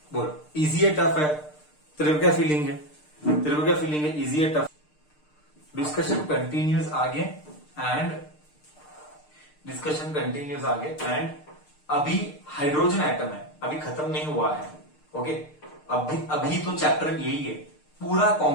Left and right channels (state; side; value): late; right; 6.6 ms